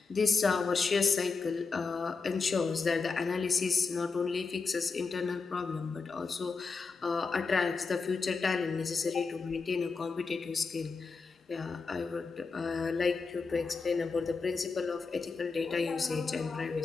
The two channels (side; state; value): right; quieter; 4.6 dB